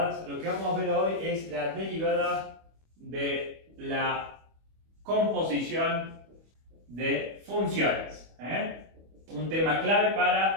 Lo que vamos a ver hoy es la derivada de la composición de funciones. Un tema clave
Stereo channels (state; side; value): late; left; 25 ms